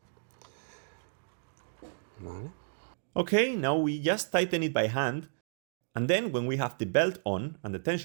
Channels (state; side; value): silent; left; digital silence